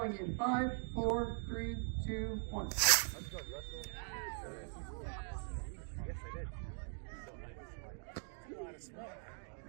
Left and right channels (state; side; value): silent; left; 50 dB below the other